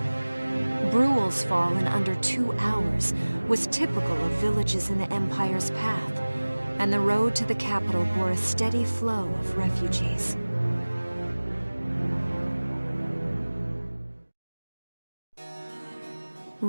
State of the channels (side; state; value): both; inverted; correlation -1.00